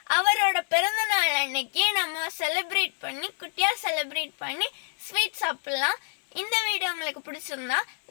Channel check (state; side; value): silent; right; digital silence